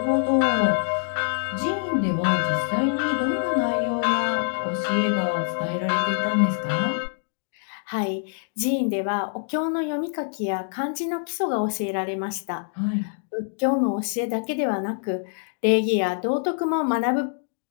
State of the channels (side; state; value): right; silent; digital silence